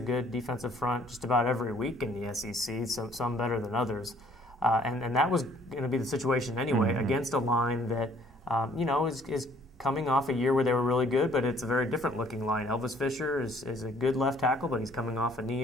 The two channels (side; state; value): both; normal; correlation 0.60